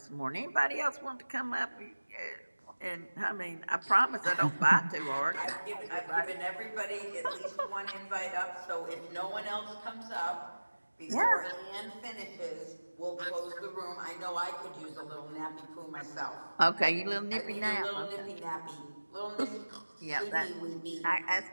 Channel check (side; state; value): both; inverted; correlation -1.00